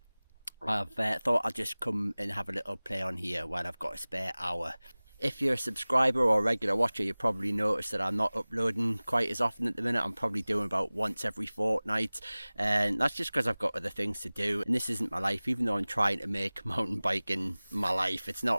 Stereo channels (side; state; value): both; inverted; correlation -0.99